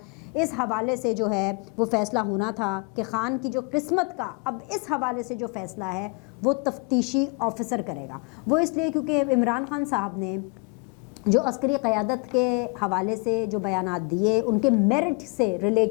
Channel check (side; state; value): right; quieter; 32.8 dB